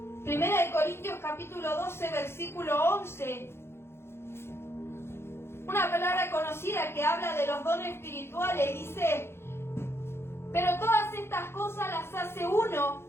Primera de Corintios capítulo 12, versículo 11. Una palabra conocida que habla de los dones espirituales. Dice, pero todas estas cosas las hace uno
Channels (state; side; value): late; right; 0.12 ms